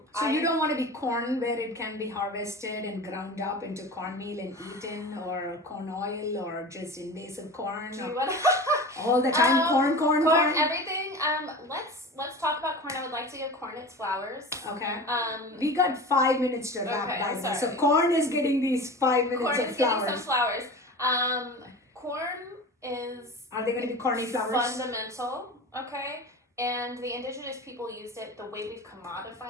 So you don't want to be corn where it can be harvested and ground up into cornmeal and eaten, or corn oil, or just invasive corn. Do or you want all the time, corn. corn? Everything. Let's talk about corn. I would like to give corn its flowers. Okay. We We got 5 minutes to wrap Okay, that. sorry. So corn is getting these 5 minutes corn of is getting flowers. some flowers. Corn is Are they going to be corny flowers? fundamental. Okay, and the indigenous people used it. The way we've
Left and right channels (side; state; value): both; normal; correlation 0.33